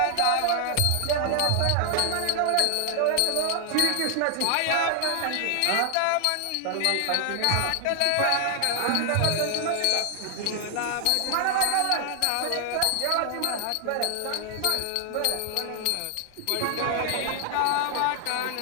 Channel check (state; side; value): different; both; correlation 0.00